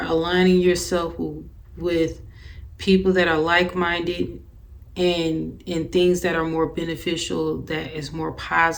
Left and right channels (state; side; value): identical; both; correlation 1.00